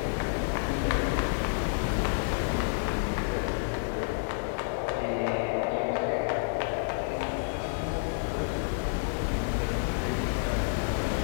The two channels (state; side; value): silent; right; 58 dB below the other